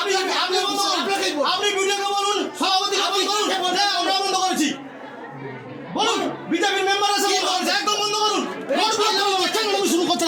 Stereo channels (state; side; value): identical; both; correlation 1.00